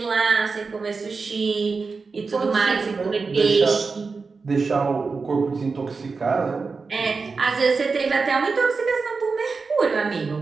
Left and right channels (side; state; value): left; quieter; 4.5 dB